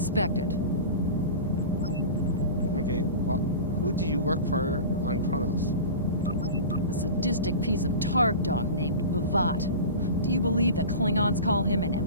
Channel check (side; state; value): both; inverted; correlation -0.32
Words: Okay, well, who do you work for on Kronos? A sadistic piece of targ dung named Bavat. Do you believe the Klingons call him an